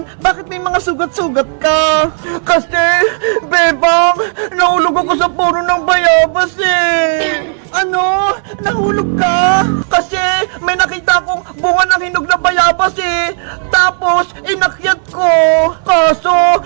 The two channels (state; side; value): silent; left; 63 dB below the other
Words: Bakit may mga sugat-sugat ka? Kasi, Bebang, nahulog ako sa puno ng bayabas eh. Ano? Nahulog ka? Kasi may nakita akong bunga ng hinog na bayabas eh. Tapos, inakyat ko. Kaso,